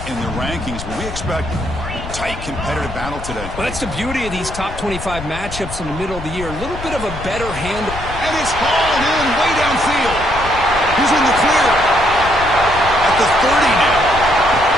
in the rankings. But we expect tight competitive battle today. Well, that's the beauty of these top 25 matchups in the middle of the year. A little bit of a better handle. And it's hauled in way downfield. He's in the clear. At the 30 now.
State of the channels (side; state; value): left; noise; rumble, 10 dB below the sound